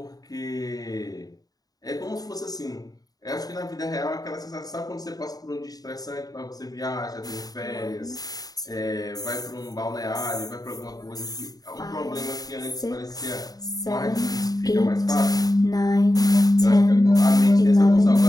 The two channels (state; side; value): late; right; 0.18 ms